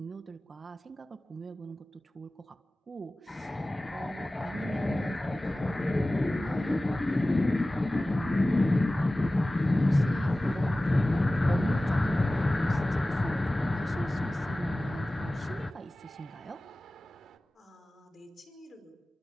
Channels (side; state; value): both; normal; correlation 0.97